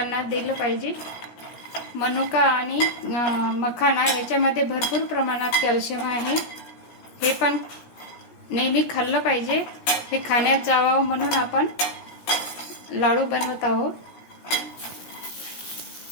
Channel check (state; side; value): late; right; 17 ms